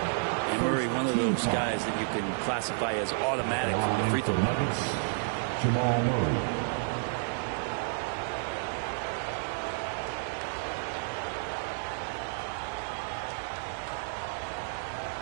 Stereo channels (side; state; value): left; silent; 57 dB below the other